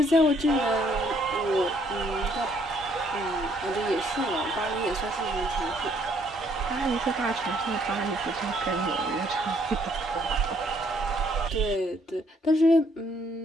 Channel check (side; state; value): both; normal; correlation 0.67